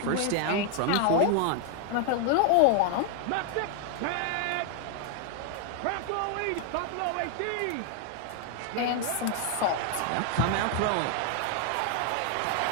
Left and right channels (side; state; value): both; different; correlation 0.00